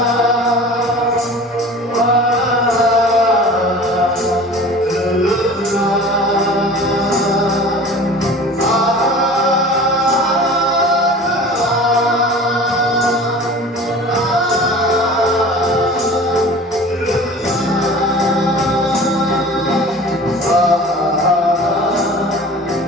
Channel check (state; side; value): normal; both; correlation 0.41